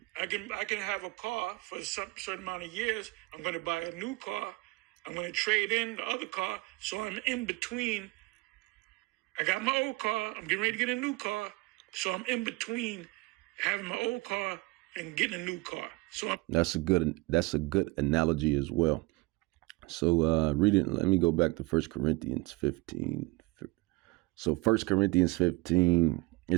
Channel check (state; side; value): quieter; left; 23.1 dB